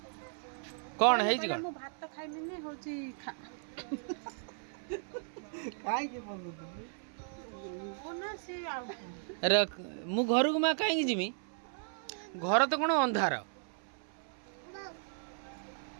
कौन है जी कौन भात खाइमी ने होची अरे मु घर को माँ कहीं जिमी घर तो कौन अंधार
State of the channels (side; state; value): left; silent; 54 dB below the other